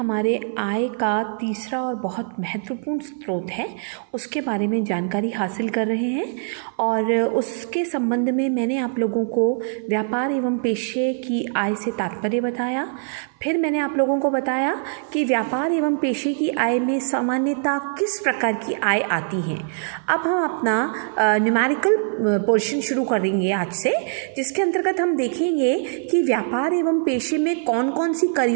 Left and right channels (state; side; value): silent; left; 55 dB below the other